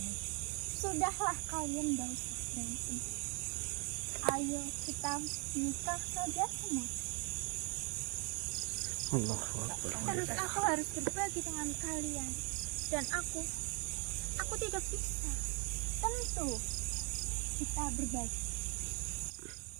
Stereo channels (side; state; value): left; quieter; 32.7 dB